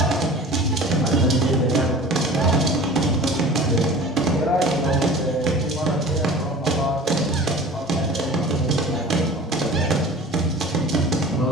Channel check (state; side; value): normal; both; correlation 0.41